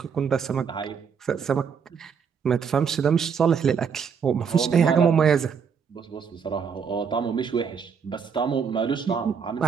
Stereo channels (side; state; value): left; quieter; 6.5 dB